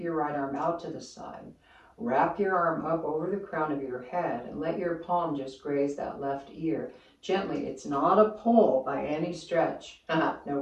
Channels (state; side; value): identical; both; correlation 1.00